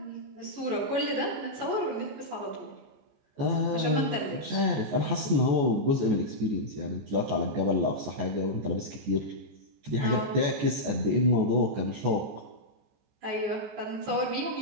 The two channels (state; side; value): late; left; 14 ms